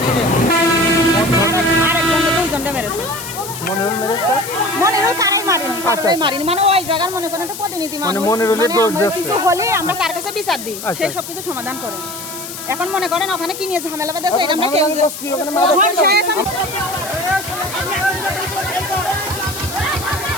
মনিরুল মেরেছে মনিরুল কারাই মারিনি কারাই মারিনি মানে ওই জায়গার মনে করেন একটা প্রতিনিধি মানে মানুষ মনিরুলের দোষ দিচ্ছে কিছু হলে আমরা কার কাছে বিচার দিই সেই সব কিছু সমাধান করে এখন মনে করেন ওখানে কি নিয়ে ঝামেলা বাঁধাছে এটা আমরা কেউ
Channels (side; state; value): left; noise; hiss, 10 dB below the sound